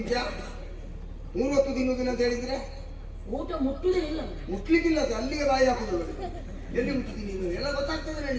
3 ಹೊತ್ತು ತಿನ್ನುವುದಿಲ್ಲ ಅಂತ ಹೇಳಿದ್ರೆ ಊಟ ಮುಟ್ಟುವುದೇ ಇಲ್ಲ. ಮುಟ್ಲಿಕ್ಕಿಲ್ಲ, ಅದು ಅಲ್ಲಿಗೆ ಬಾಯಿ ಹಾಕುದು. ಎಲ್ಲಿ ಮುಟ್ತೀನಿ ನೀನು? ಎಲ್ಲ ಗೊತ್ತಾಗ್ತದೆ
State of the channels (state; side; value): identical; both; correlation 1.00